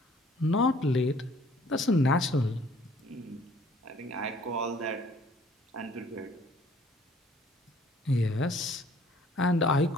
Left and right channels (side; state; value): both; normal; correlation 0.57